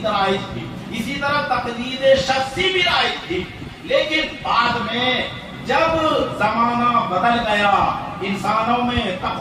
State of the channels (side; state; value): both; identical; correlation 1.00